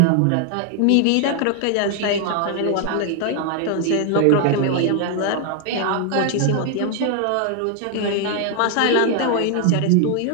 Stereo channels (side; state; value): both; different; correlation 0.00